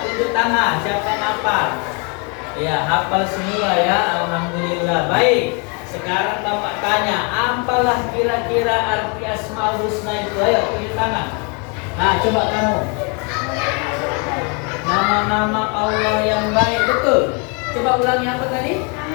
tunjuk tangan, siapa yang hafal? Ya, hafal semua ya, alhamdulillah. Baik, sekarang Bapak tanya, apalah kira-kira arti Asmaul Husna itu? Ayo, tunjuk tangan. Nah, coba kamu. Nama-nama Allah yang baik, betul. Coba ulangi apa tadi?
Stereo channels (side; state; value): right; quieter; 34.4 dB